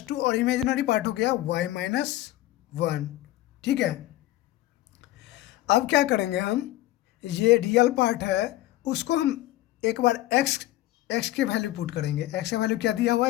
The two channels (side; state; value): right; quieter; 15.9 dB